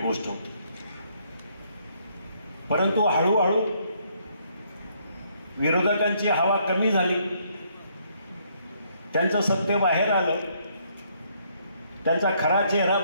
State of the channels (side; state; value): both; inverted; correlation -0.69